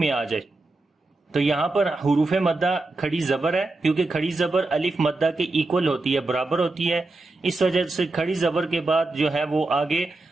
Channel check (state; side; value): quieter; left; 3.1 dB